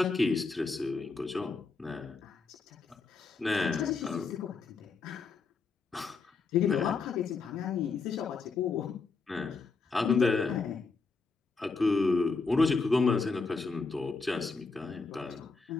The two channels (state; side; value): quieter; right; 4.3 dB